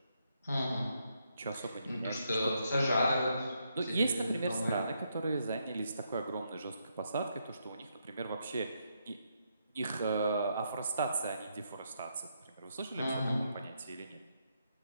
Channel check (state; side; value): inverted; both; correlation -0.78